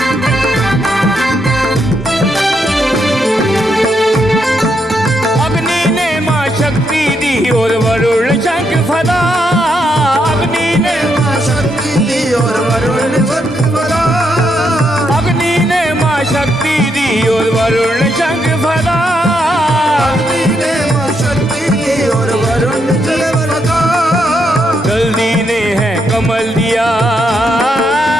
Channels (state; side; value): normal; both; correlation 0.79